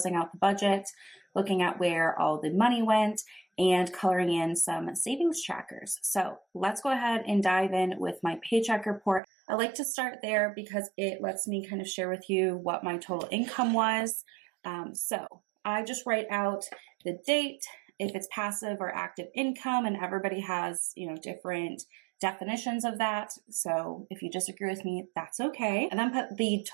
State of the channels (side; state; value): left; drops out; at 9.2 s